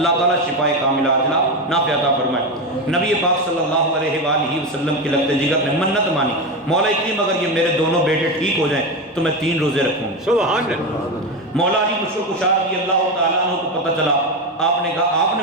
تعالیٰ شفائے کاملہ عاجلہ نافع عطا فرمائے۔ نبی پاک صلی اللہ علیہ وآلہ وسلم کی لخت جگر نے منت مانی، مولا کریم اگر یہ میرے دونوں بیٹے ٹھیک ہو جائیں تو میں 3 روزے رکھوں گا۔ سبحان اللہ۔ مولا علی مشکل کشار رضی اللہ تعالیٰ عنہ کو پتہ چلا، آپ نے کہا آپ نے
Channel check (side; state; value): both; normal; correlation 0.16